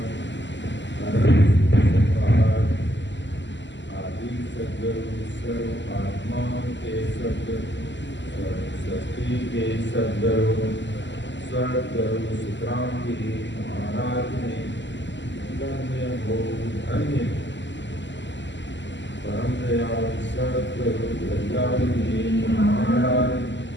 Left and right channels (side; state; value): right; late; 0.53 ms